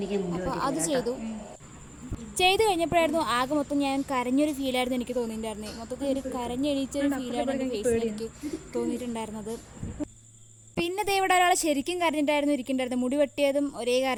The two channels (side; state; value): both; identical; correlation 1.00